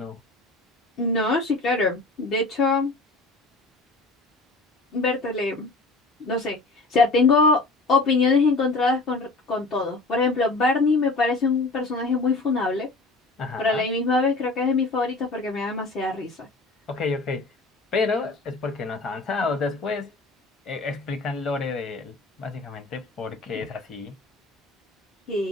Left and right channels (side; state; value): right; quieter; 3.3 dB